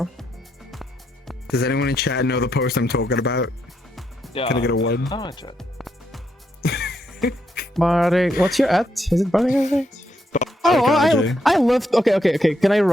Does anyone in chat know the post I'm talking about? Yeah. Can I get a one? Oh, chat. Bardi, what's your at? Is it Bardi? Oh, I love. Okay. Can I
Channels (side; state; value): both; normal; correlation 0.79